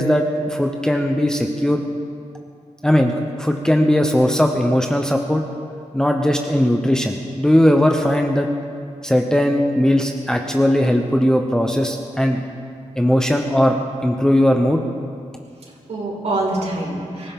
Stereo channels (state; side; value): normal; both; correlation 0.92